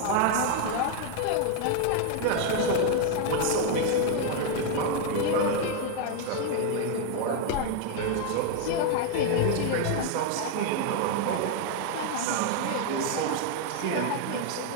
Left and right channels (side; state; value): both; different; correlation 0.00